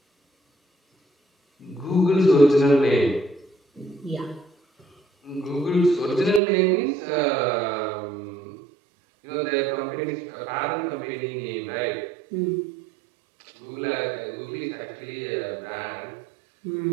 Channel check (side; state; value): left; drops out; at 6.4 s